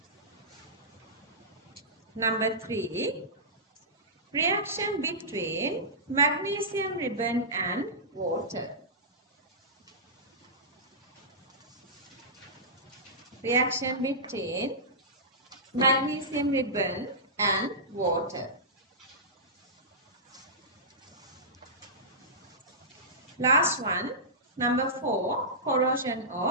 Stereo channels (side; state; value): both; normal; correlation -0.17